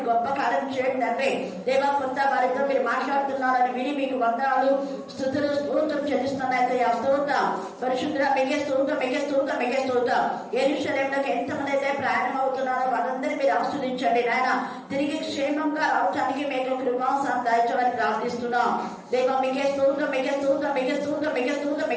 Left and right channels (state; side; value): identical; both; correlation 1.00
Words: గొప్ప కార్యం చేయండి తండ్రి దేవ. కొంత వారితో మీరు మాట్లాడుతున్నారని విని మీకు వందనాలు స్తుతులు స్తోత్రం చెల్లిస్తున్నాయితే ఆ స్తోత్రం పరిశుద్ధ మిగే స్తోత్రం మిగే స్తోత్రం మిగే స్తోత్రం. యెరూషలేములోకి ఎంతమంది అయితే ప్రయాణం అవుతున్నారో వారందరినీ మీరు ఆస్వాదించండి నాయన. తిరిగి క్షేమంగా రావడానికి మీకు కృపాసనం దాయించమని ప్రార్థిస్తున్నాం దేవ. మిగే స్తోత్రం మిగే స్తోత్రం మిగే స్తోత్రం మిగే స్తోత్రం